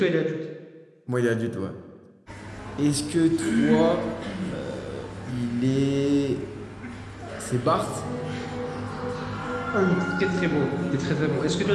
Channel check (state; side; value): identical; both; correlation 1.00